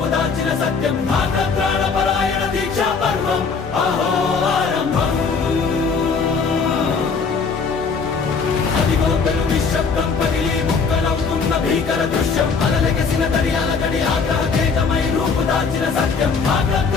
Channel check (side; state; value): right; quieter; 5.2 dB